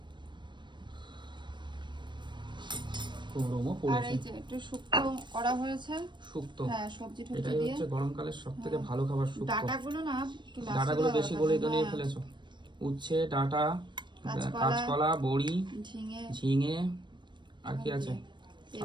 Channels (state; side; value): late; left; 0.22 ms